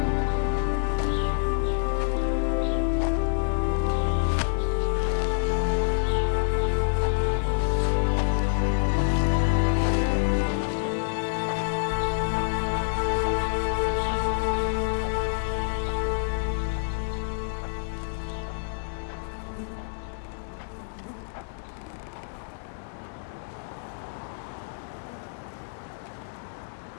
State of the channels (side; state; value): right; silent; digital silence